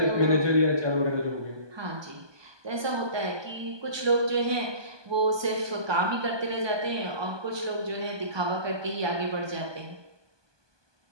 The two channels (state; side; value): late; left; 1.2 ms